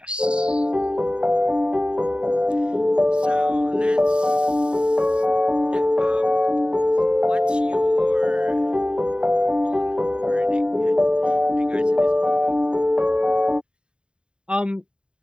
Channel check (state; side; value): late; left; 0.053 ms